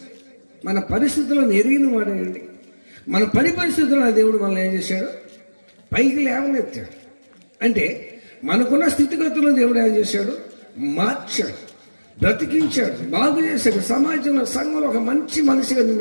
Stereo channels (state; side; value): inverted; both; correlation -1.00